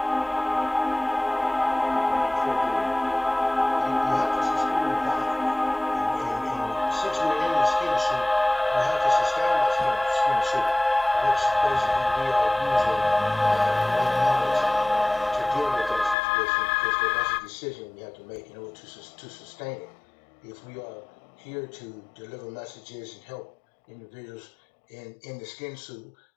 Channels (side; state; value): right; drops out; at 16.2 s